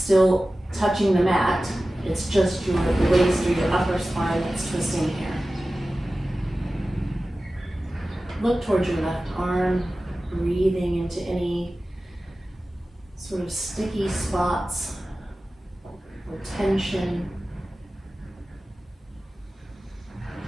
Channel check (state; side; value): normal; both; correlation 0.96